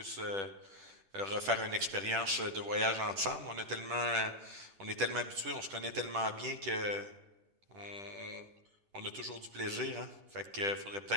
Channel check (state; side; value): late; left; 10 ms